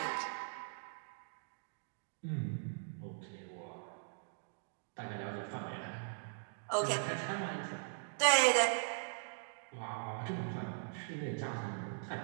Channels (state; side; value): silent; left; digital silence